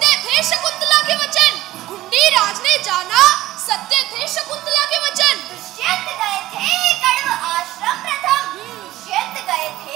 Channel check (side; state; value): left; quieter; 15.8 dB